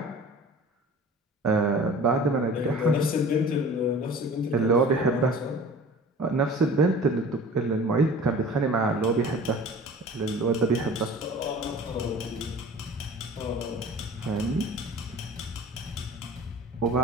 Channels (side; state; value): both; normal; correlation 0.42